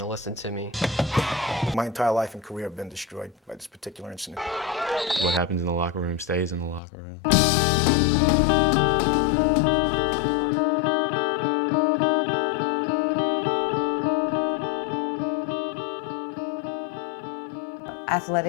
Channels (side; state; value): right; drops out; at 6.8 s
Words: to listen to me. My entire life and career have been destroyed by this particular incident. What happens in the locker room stays in the locker room.